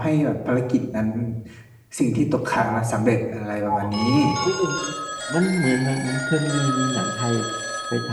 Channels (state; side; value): identical; both; correlation 1.00